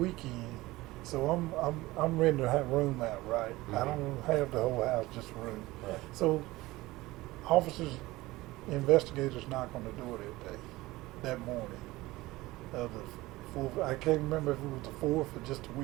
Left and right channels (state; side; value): quieter; left; 19.2 dB